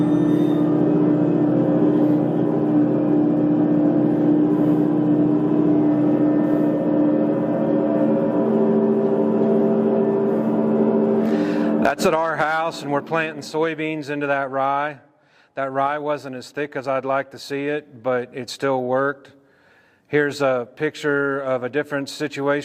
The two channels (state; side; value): identical; both; correlation 1.00